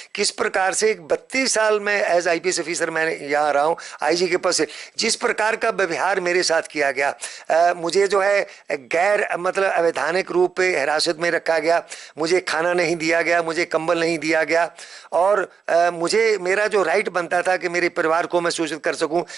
किस प्रकार से 32 साल में एज आईपीएस ऑफिसर मैं यहाँ रहा हूँ आईजी के पद से, जिस प्रकार का व्यवहार मेरे साथ किया गया, मुझे जो है गैर मतलब अवैधानिक रूप पे हिरासत में रखा गया, मुझे खाना नहीं दिया गया, मुझे कंबल नहीं दिया गया, और मुझे मेरा जो राइट बनता था कि मेरे परिवार को मैं सूचित कर सकूं,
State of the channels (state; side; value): quieter; left; 6.1 dB